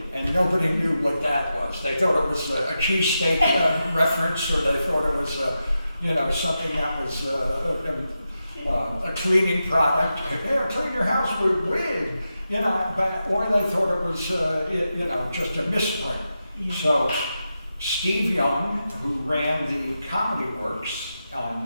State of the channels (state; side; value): inverted; both; correlation -0.89